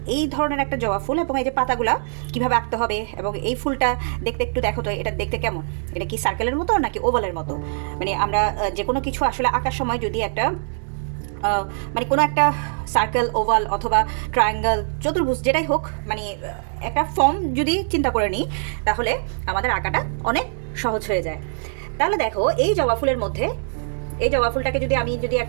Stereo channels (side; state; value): left; silent; digital silence